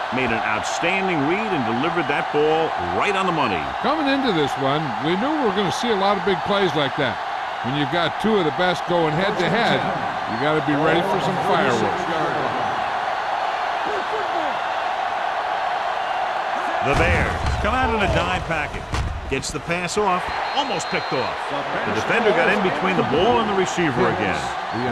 made an outstanding read and delivered that ball right on the money. Coming into this one, we knew we were going to see a lot of big plays like that. When you've got two of the best going head-to-head, you got to be ready for some fireworks. The Bears come out in a dime package. Gets the pass off, almost picked off. The defender got in between the ball and the receiver again. The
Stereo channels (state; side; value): identical; both; correlation 1.00